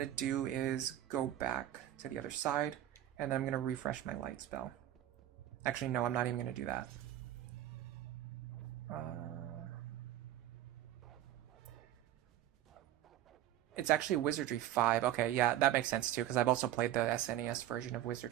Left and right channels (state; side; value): quieter; left; 12.7 dB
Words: to do is go back to the other side, and then I'm going to refresh my light spell. Actually, no, I'm not even going to do that. It's actually Wizardry 5. Okay, yeah, that makes sense too, because I've also played the SNES version of